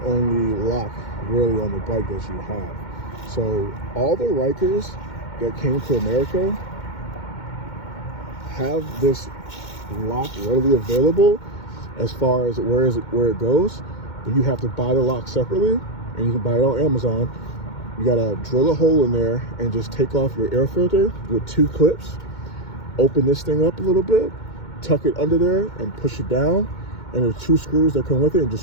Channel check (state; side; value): late; right; 2.2 ms